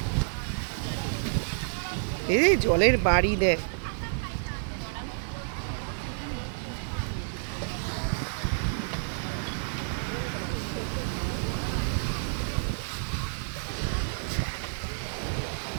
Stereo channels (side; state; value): left; silent; 58 dB below the other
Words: এই জলের বাড়ি দেখ,